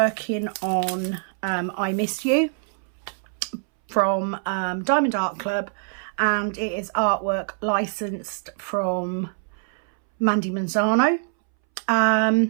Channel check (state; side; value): silent; left; 62 dB below the other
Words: on I Miss You from Diamond Art Club, and it is artwork licensed from Mandie Manzano.